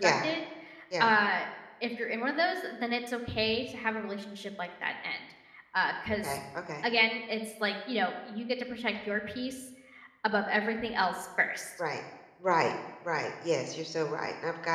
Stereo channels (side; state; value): both; identical; correlation 1.00